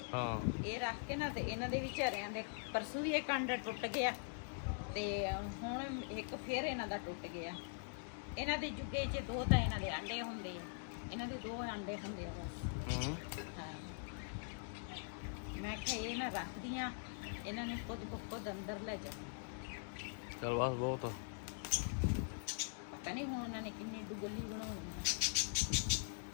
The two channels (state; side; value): silent; right; digital silence